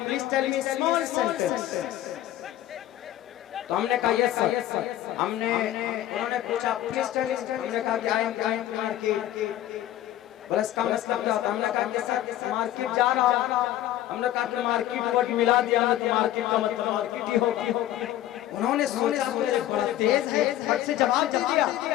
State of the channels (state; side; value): quieter; right; 13.3 dB